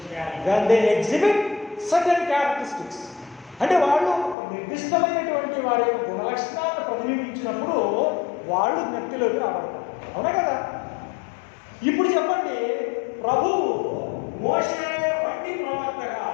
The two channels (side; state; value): right; drops out; at 4.4 s